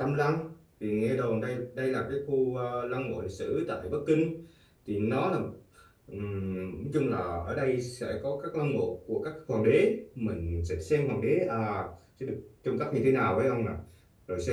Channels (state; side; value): identical; both; correlation 1.00